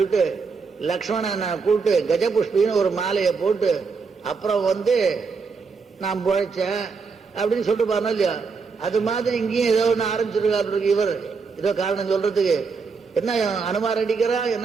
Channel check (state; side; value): quieter; left; 5.0 dB